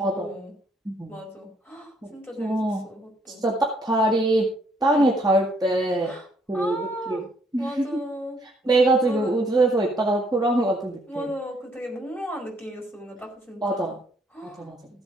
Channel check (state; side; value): normal; both; correlation 0.68